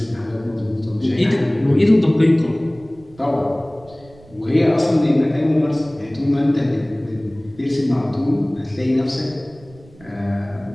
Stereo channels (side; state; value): right; noise; rumble, 24 dB below the sound